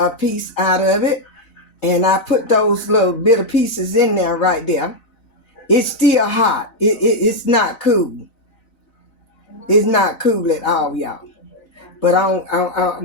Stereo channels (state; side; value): late; right; 4.0 ms